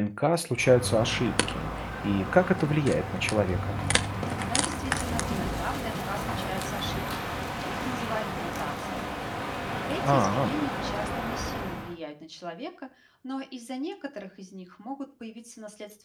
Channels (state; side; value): identical; both; correlation 1.00